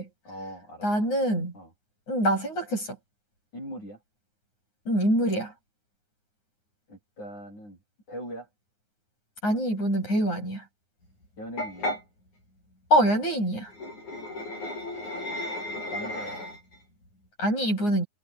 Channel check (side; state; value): right; late; 9.6 ms